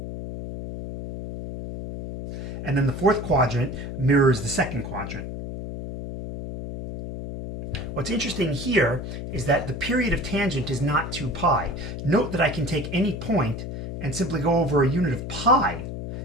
And then the fourth quadrant mirrors the second quadrant. What's interesting here is that the period of tangent is not 2 pi. Note that I can take any point and simply go over a unit of pi,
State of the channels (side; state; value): left; noise; hum, 5 dB below the sound